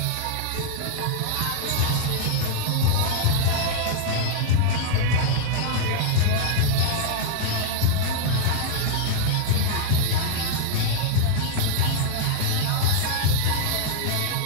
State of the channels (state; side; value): different; both; correlation 0.00